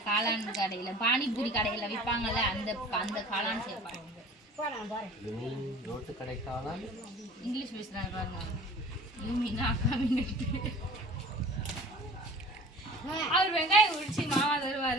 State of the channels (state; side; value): normal; both; correlation 0.44